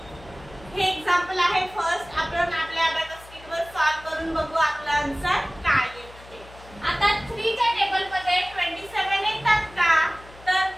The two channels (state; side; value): noise; left; hum, 21 dB below the sound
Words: हे एक्झाम्पल आहे फर्स्ट। आपण आपल्या अभ्यास किटवर सॉल्व करून बघू आपला आन्सर काय येते ते। आता 3 च्या टेबल मध्ये 27 येतात का, तर